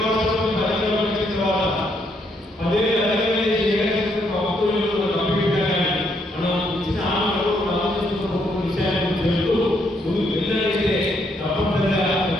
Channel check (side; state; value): both; normal; correlation 0.74